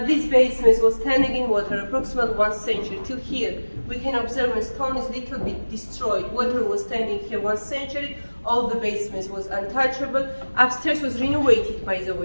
this basement was standing in water approximately 1 century till here. We can observe the stone is little bit destroyed. Water was standing here 1 century. All the basements was untouchable. Upstairs was renovated, by the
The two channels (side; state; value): both; inverted; correlation -1.00